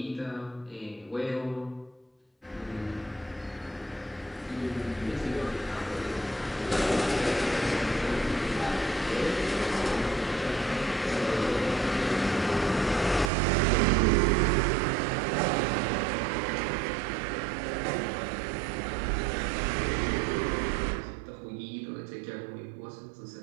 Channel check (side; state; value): left; drops out; at 13.3 s